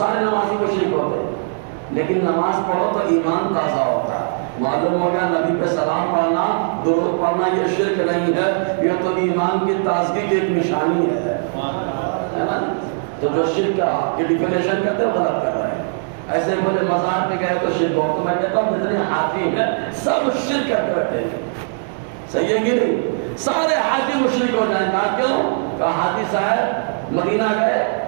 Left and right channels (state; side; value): silent; left; digital silence